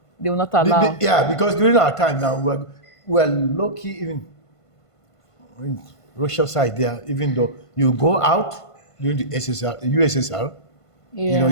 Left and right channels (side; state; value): right; late; 1.5 ms